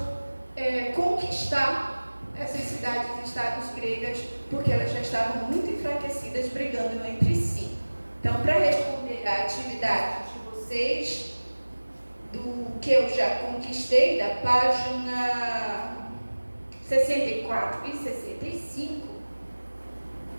conquistar essas cidades-estados gregas, porque elas já estavam muito enfraquecidas, brigando entre si. Então, para responder à atividade de vocês, do que eu já conquistei, da página 64 e 65,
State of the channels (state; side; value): inverted; both; correlation -1.00